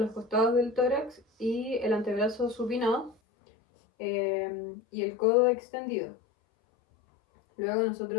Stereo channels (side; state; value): right; drops out; at 3.2 s